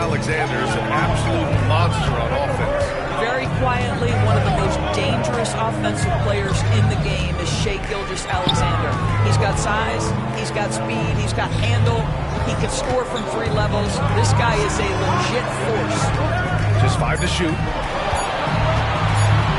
is an absolute monster on offense. Very quietly, one of the most dangerous offensive players in the game is Shai Gilgeous-Alexander. He's got size, he's got speed, he's got handle, he can score from 3 levels. This guy is a legit force. Just 5 to shoot.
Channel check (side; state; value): both; identical; correlation 1.00